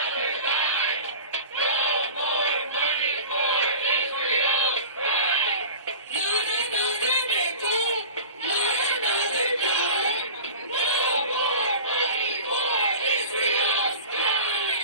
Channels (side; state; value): both; inverted; correlation -0.35